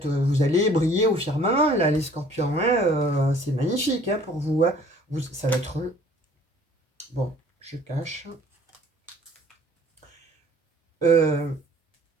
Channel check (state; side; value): normal; both; correlation 0.54